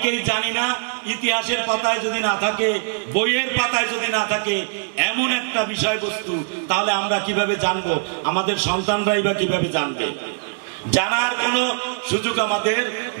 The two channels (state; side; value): silent; left; 64 dB below the other